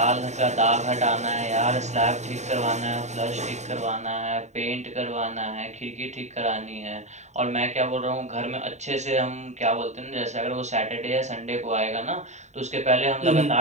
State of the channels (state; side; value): late; left; 0.34 ms